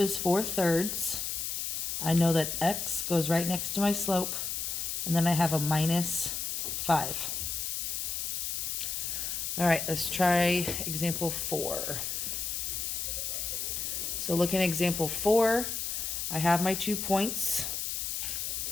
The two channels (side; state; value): left; noise; hiss, 2 dB below the sound